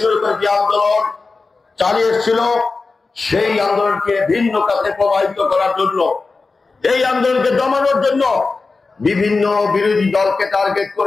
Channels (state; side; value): quieter; right; 4.0 dB